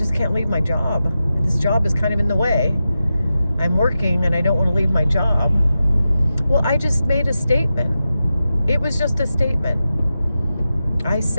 can't leave my job. This job is kind of in the way. I'm working and I don't want to leave my job. Well, I just made a statement. It was just a statement. I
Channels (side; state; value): both; inverted; correlation -0.91